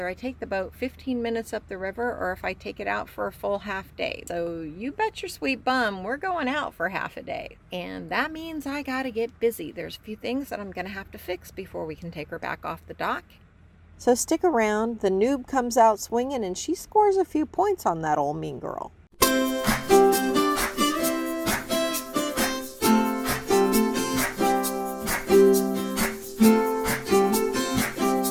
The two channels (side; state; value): both; identical; correlation 1.00